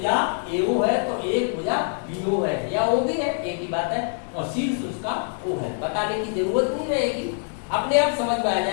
AO है तो एक भुजा BO है या OB है, एक ही बात है, और शीर्ष उसका O है। बताने की जरूरत नहीं रहेगी, अपने आप समझ में आ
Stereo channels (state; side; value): silent; right; 62 dB below the other